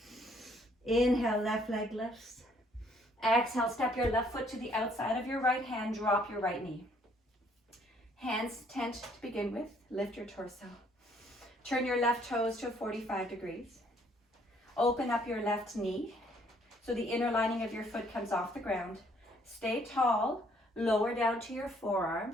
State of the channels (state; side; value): normal; both; correlation 0.64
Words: Inhale, left leg lifts. Exhale, step your left foot to the outside of your right hand. Drop your right knee. Hands tent to begin with. Lift your torso. Turn your left toes to 45 degrees. Open up your left knee so the inner lining of your foot comes off the ground. Stay tall. Lower down to your